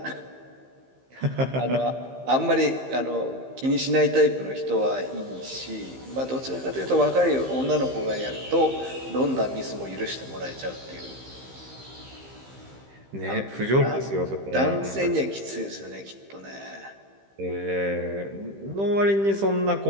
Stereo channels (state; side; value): late; left; 15 ms